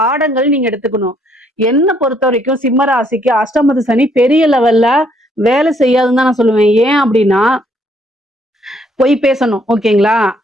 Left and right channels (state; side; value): normal; both; correlation 0.68